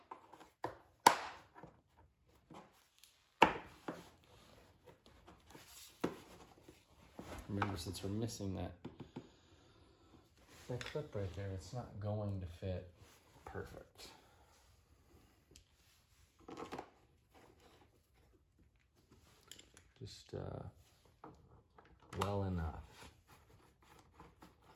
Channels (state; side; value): identical; both; correlation 1.00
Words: Remember, since we're missing that clip right there, it's not going to fit perfect. Just well enough.